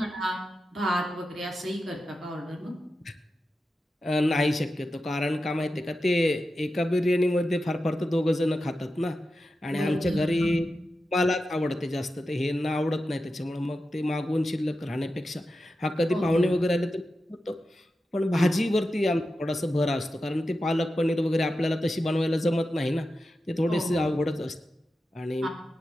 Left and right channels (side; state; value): both; normal; correlation 0.91